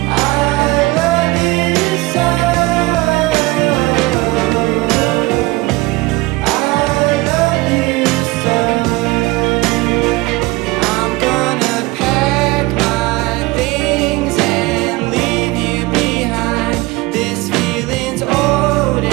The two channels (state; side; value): quieter; left; 22.1 dB